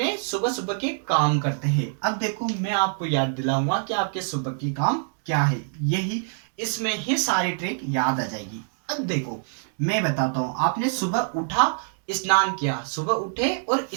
सुबह सुबह के काम करते हैं। अब देखो मैं आपको याद दिलाऊंगा कि आपके सुबह की काम क्या है, यही इसमें ही सारी ट्रिक याद आ जाएगी। अब देखो मैं बताता हूं, आपने सुबह उठा, स्नान किया, सुबह उठे और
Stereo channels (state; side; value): silent; left; 62 dB below the other